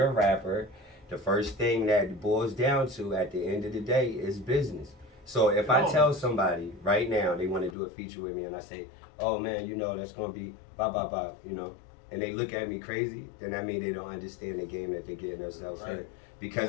a rapper, the first thing that boils down to at the end of the day is business. So if I tell somebody right now they want to do a feature with me and I say, oh man, that's gonna be blah blah blah, and they look at me crazy, then that means they don't understand the game that they're getting themselves in. Right.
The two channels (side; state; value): right; drops out; at 7.8 s